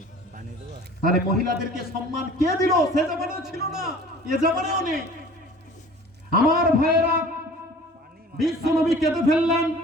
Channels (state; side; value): normal; both; correlation 0.46